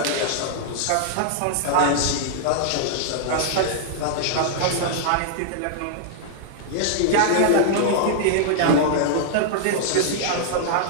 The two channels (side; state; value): both; different; correlation -0.01